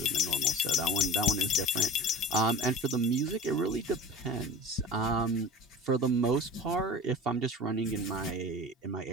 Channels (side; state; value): both; normal; correlation 0.36